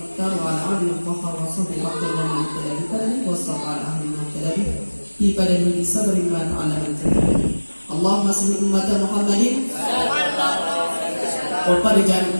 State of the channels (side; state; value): both; inverted; correlation -1.00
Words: wa ala alihi wa sahbihi wa man tabi'ahum wa sallama alaihi wa sallam pada diri sabri wa ta'ala Allahumma salli ummata Muhammadin wa farij